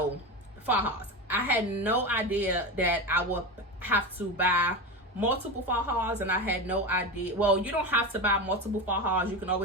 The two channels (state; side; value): normal; both; correlation 0.20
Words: fajas, I had no idea that I would have to buy multiple fajas, and I had no idea. Well, you don't have to buy multiple fajas. You can